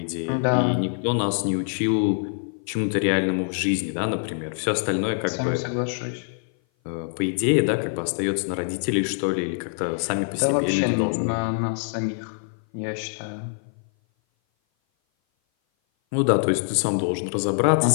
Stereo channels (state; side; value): silent; right; 57 dB below the other